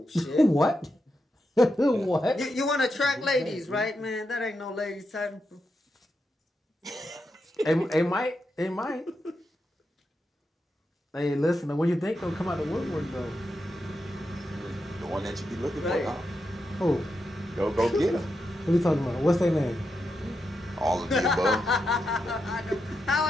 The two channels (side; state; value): both; normal; correlation 0.86